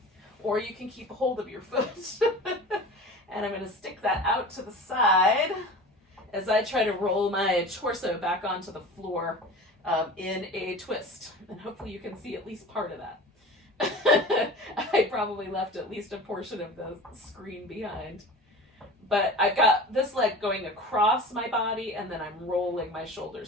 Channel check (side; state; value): both; normal; correlation 0.37